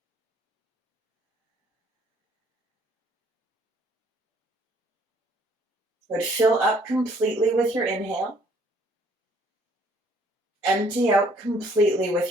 Good. Fill up completely with your inhale. Empty out completely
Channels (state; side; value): normal; both; correlation 0.62